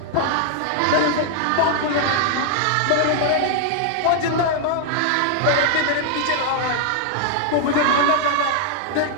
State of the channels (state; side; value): different; both; correlation 0.00